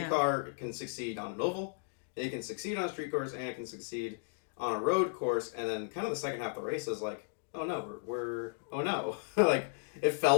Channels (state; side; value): silent; right; digital silence